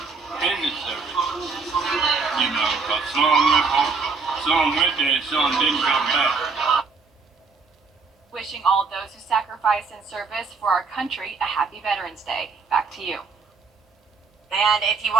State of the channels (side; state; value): left; quieter; 4.7 dB